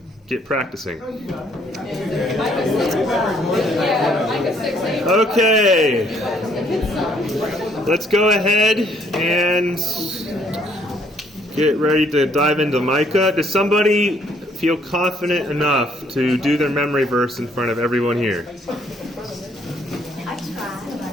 get practicing. Okay. Let's go ahead and get ready to dive into Micah. Does somebody feel confident enough to do their memory verse in front of everyone here? I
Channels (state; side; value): normal; both; correlation 0.65